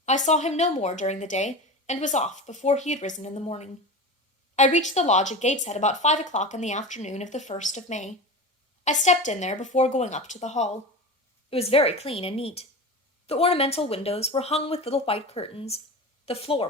I saw him no more during the day, and was off before he had risen in the morning. I reached the lodge at Gateshead about 5 o'clock in the afternoon of the 1st of May. I stepped in there before going up to the hall. It was very clean and neat. The ornamental windows were hung with little white curtains. The floor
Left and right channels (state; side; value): normal; both; correlation 0.28